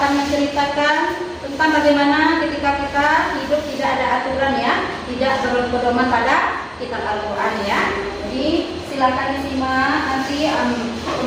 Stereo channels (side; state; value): both; identical; correlation 1.00